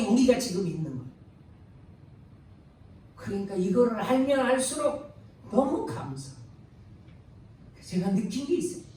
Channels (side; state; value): both; identical; correlation 1.00